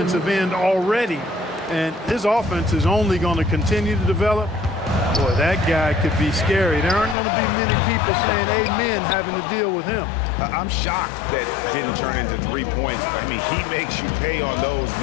end already. And his offense is only going to continue to develop. Boy, that guy could be scary. There aren't going to be many people saying amen having to deal with him. I'm shocked that it didn't turn into 3 points. I mean, he makes you pay on those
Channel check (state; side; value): drops out; right; at 7.2 s